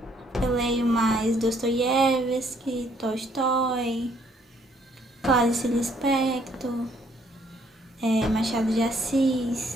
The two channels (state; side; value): normal; both; correlation 0.66